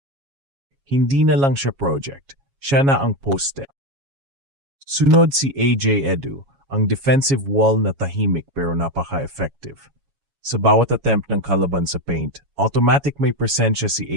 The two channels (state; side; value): late; left; 7.3 ms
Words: hindi na lang siya project, siya na ang poste. Sunod si AJ Edu, ang defensive wall na tahimik pero napaka-effective. Sa bawat attempt ng kalaban sa paint, automatic may presensya si